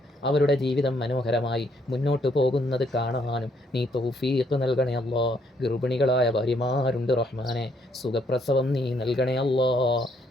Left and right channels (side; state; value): both; normal; correlation 0.70